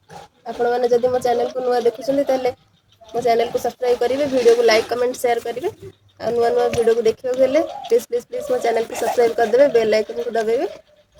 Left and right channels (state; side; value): identical; both; correlation 1.00